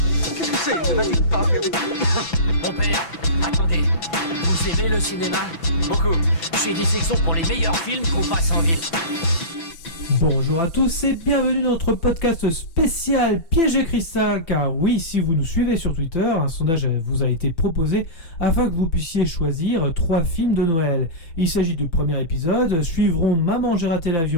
Qu'est-ce que c'est? Ne va-t-il pas faire des trucs? Mon père, attendez, vous aimez le cinéma? Beaucoup. J'ai des sections pour les meilleurs films qu'on passe en ville. Bonjour à tous et bienvenue dans notre podcast spécial Piège de cristal, car oui, si vous nous suivez sur Twitter, un sondage vous a été proposé afin que vous puissiez choisir 3 films de Noël. Il s'agit du premier épisode, suivront Maman j'ai raté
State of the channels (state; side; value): late; right; 6.0 ms